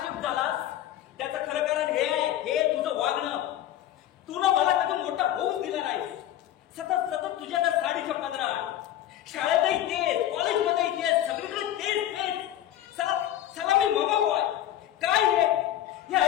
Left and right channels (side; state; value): right; quieter; 12.3 dB